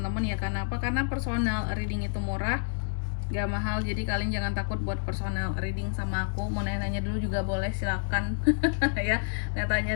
ya. Karena apa? Karena personal reading itu murah, gak mahal. Jadi kalian jangan takut buat personal reading sama aku. Mau nanya-nanya dulu juga boleh, silakan ya, tanya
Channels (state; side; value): silent; right; digital silence